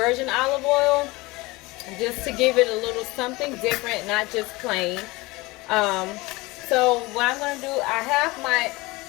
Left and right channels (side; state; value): right; quieter; 22.4 dB